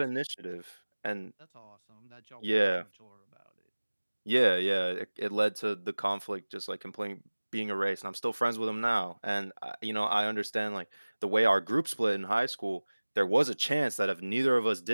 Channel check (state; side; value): inverted; both; correlation -1.00